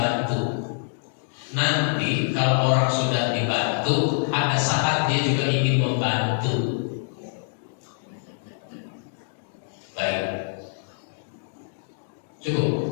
Nanti kalau orang sudah dibantu, ada saat dia juga ingin membantu. Baik. Cukup.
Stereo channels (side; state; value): right; silent; digital silence